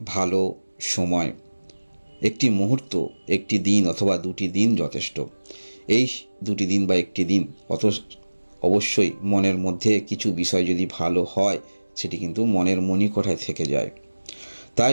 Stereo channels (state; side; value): inverted; both; correlation -1.00